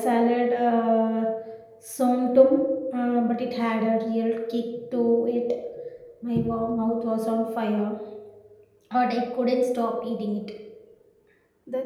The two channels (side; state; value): both; identical; correlation 1.00